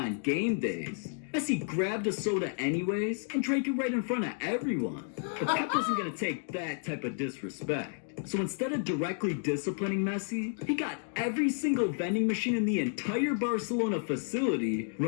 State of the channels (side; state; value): right; silent; 57 dB below the other